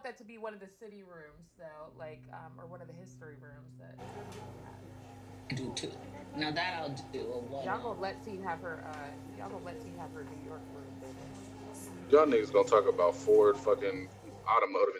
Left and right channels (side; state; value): both; identical; correlation 1.00